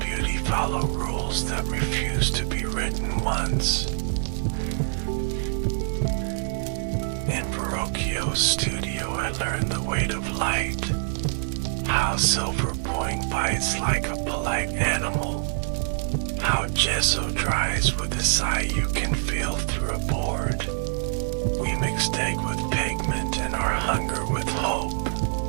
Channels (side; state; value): left; silent; digital silence